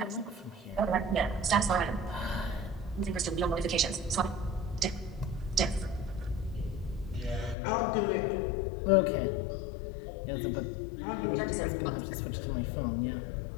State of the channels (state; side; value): drops out; right; at 7.6 s